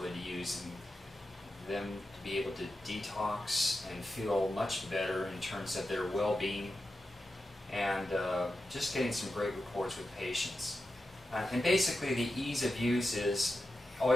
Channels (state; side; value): normal; both; correlation 0.90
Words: to use, and them to be able to detox and feel much better in terms of their well-being, and just getting some great reports with patients. And basically the ease of use is all